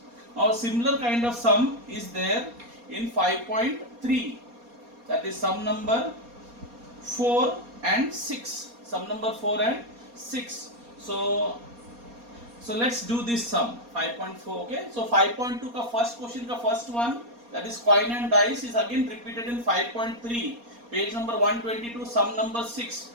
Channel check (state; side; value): late; left; 4.2 ms